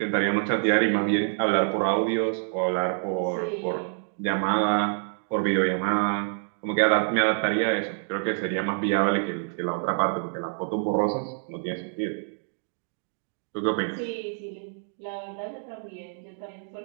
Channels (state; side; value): silent; left; digital silence